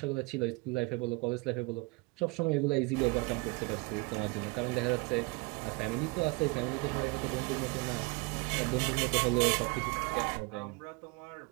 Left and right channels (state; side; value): quieter; left; 26.8 dB